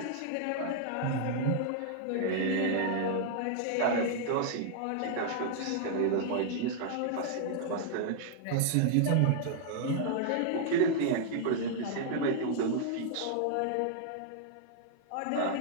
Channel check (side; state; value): both; different; correlation -0.01